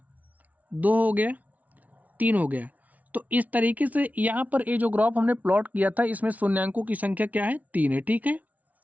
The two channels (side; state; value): left; late; 0.073 ms